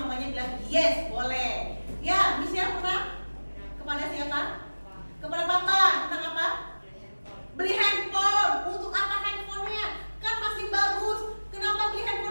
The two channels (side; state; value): both; inverted; correlation -1.00